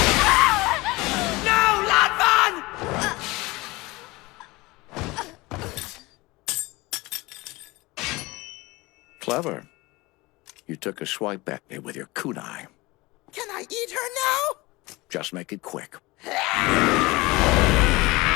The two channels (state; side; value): quieter; right; 22.1 dB